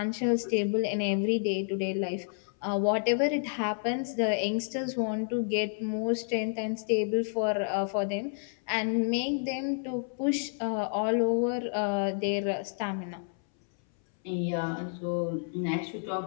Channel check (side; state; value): right; silent; 58 dB below the other